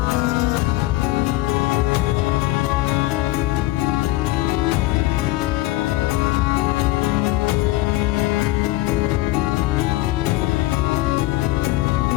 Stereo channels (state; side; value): quieter; right; 18.0 dB